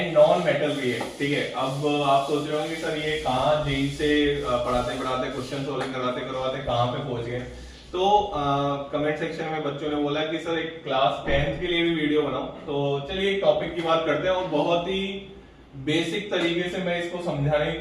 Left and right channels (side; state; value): both; identical; correlation 1.00